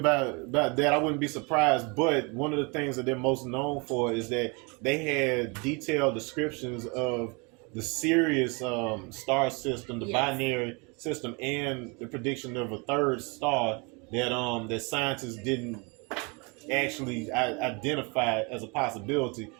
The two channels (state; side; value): quieter; left; 30.5 dB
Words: that. I wouldn't be surprised, but one of the things that they're most known for is that they had detailed descriptions of the Sirius star system, the binary system, and the prediction of a third star that scientists didn't actually identify as a possibility